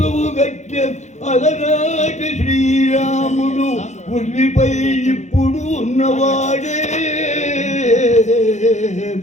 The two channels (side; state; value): right; late; 0.34 ms